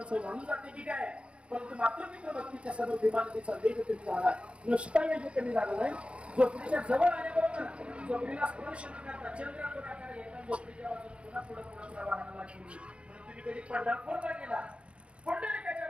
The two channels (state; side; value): late; left; 0.059 ms